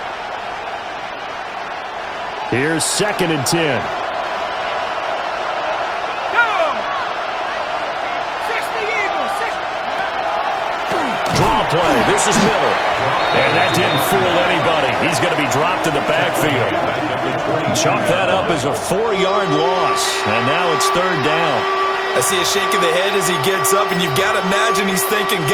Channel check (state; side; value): identical; both; correlation 1.00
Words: Here's 2nd and 10. Draw play. This is Miller. And that didn't fool anybody. He's going to be dropped in the backfield. Chalk that up as a 4-yard loss. And now it's 3rd down. I see a shake of the head as he gets up, and you've got to imagine he's thinking,